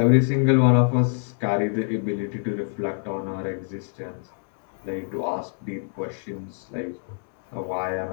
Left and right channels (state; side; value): silent; right; 55 dB below the other